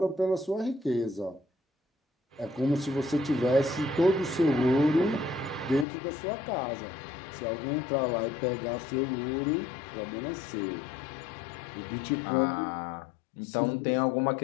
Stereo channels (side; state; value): right; drops out; at 5.9 s